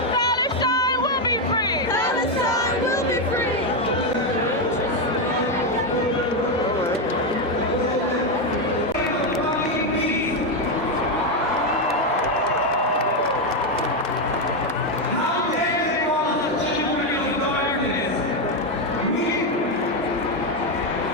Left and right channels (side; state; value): both; normal; correlation 0.06